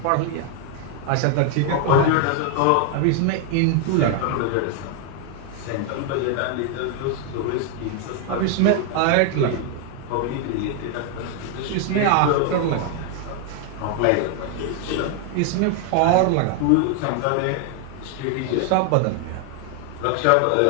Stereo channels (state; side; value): different; both; correlation 0.00